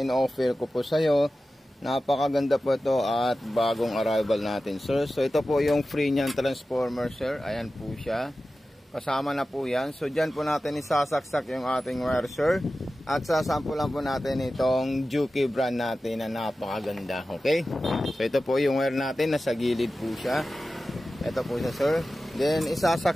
ko po sa iyo. Napakaganda po ito at bagong arrival natin sir. So ito po yung free niyan transformer sir. Ayan po siya. Kasama na po yan. So dyan po natin isasaksak yung ating wire sir. At sasampulan po natin itong Juki brand natin na napakaganda. Okay? So ito po yung wire natin. Nasa gilid po siya. Ito po siya sir. Then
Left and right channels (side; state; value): both; normal; correlation 0.94